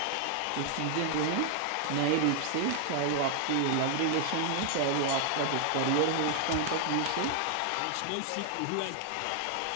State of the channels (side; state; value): both; different; correlation 0.00